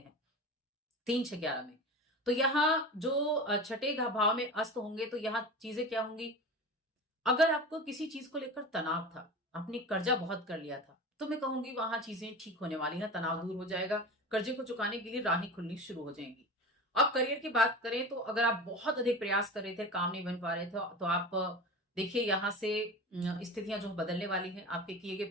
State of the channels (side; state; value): both; normal; correlation 0.31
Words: 3, 6, 11 में। तो यहाँ जो 6ठे भाव में अस्त होंगे तो यहाँ चीजें क्या होंगी, अगर आपको किसी चीज को लेकर तनाव था, आपने कर्जा बहुत कर लिया था, तो मैं कहूंगी वहां चीजें ठीक होने वाली हैं, तनाव दूर हो जाएगा, कर्जे को चुकाने के लिए राहें खुलनी शुरू हो जाएंगी। अब करियर की बात करें तो अगर आप बहुत अधिक प्रयास कर रहे थे, काम नहीं बन पा रहे थे, तो आप देखिए यहां से स्थितियां जो बदलने वाली हैं, आपके किए गए